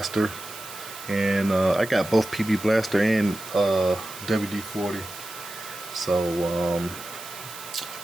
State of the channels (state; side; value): noise; right; hiss, 14 dB below the sound